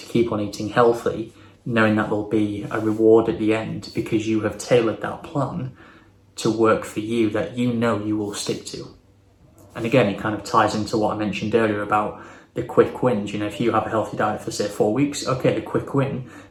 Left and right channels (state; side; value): identical; both; correlation 1.00